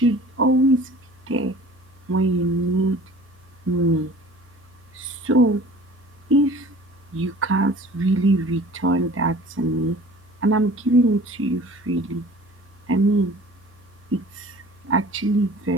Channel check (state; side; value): noise; left; hum, 29 dB below the sound